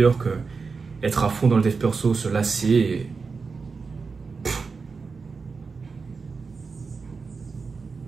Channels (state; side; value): quieter; left; 4.8 dB